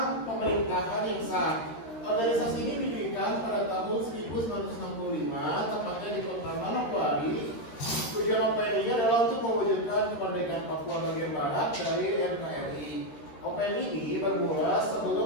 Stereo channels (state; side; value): late; right; 13 ms